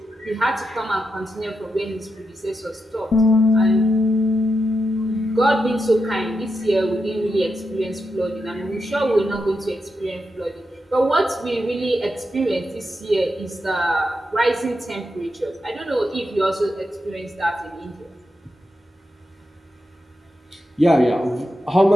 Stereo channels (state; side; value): normal; both; correlation 0.86